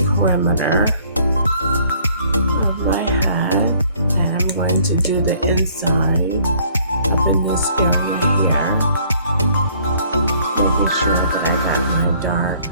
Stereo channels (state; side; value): inverted; both; correlation -0.60